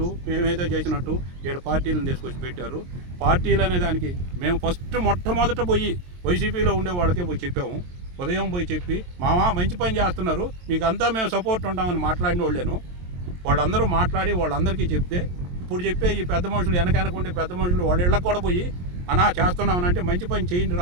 మేమేదో చేసినట్టు 7 పార్టీలను తీసుకొచ్చి పెట్టారు. పార్టీలు అనే దానికి మేము మొట్టమొదట పోయి వైసీపీలో ఉండే వాళ్ళకే పోయి చెప్పాము. ఉదయం పోయి చెప్పి మామ మంచి పని చేస్తున్నారు, మీకు అంతా మేము సపోర్ట్ ఉంటామని మాట్లాడిన వాళ్ళేను. వాళ్ళందరూ మాట్లాడి వాళ్ళందరికీ చెప్తే ఇప్పుడు చెప్పే ఈ పెద్ద మనుషులు వెనకుండే పెద్ద మనుషులు వాళ్ళ ఇళ్ళకి కూడా పోయి అన్నా చేస్తున్నామనంటే మంచి పని చేయండి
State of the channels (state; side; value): late; left; 22 ms